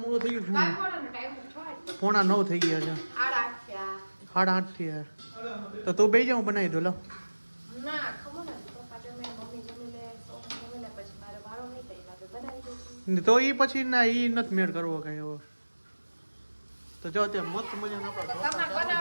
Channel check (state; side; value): inverted; both; correlation -1.00